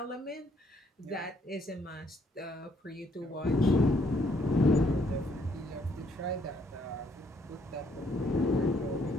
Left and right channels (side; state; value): both; normal; correlation 0.68